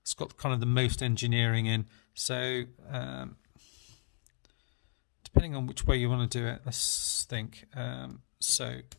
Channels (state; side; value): silent; right; 55 dB below the other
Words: it's got kind of the most engineering in. So depending on which way you want to do it, let's think. So